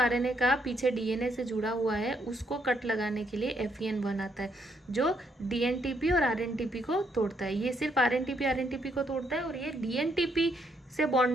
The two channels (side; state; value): both; normal; correlation 0.74